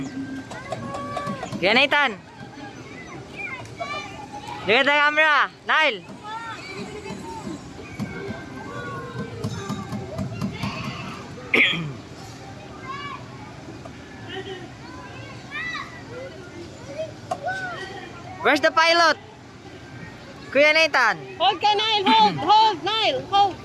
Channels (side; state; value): both; identical; correlation 1.00